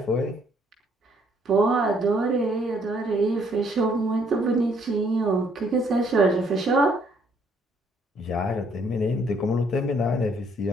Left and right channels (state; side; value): normal; both; correlation 0.67